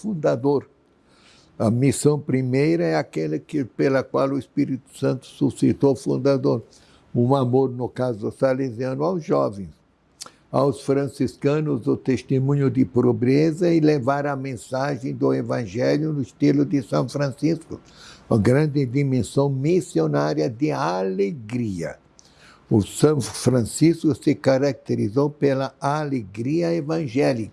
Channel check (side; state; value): both; identical; correlation 1.00